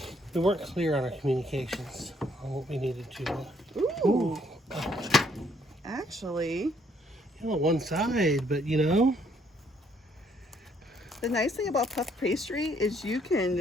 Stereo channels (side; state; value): both; normal; correlation 0.67